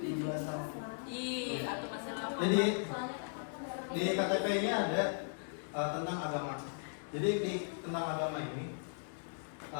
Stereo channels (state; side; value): silent; right; digital silence